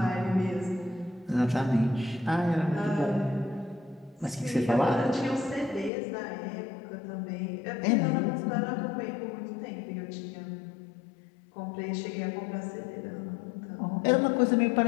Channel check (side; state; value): right; drops out; at 5.9 s